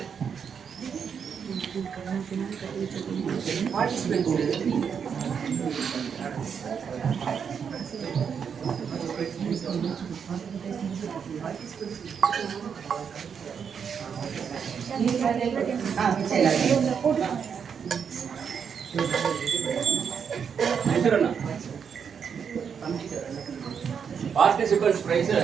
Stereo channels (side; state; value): left; quieter; 7.0 dB